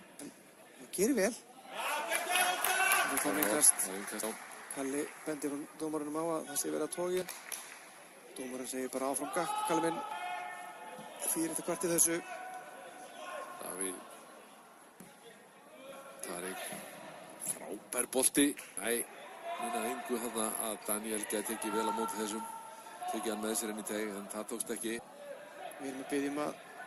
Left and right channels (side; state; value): both; identical; correlation 1.00